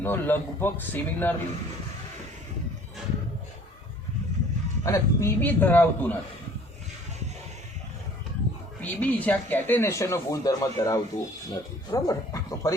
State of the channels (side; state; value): both; normal; correlation 0.52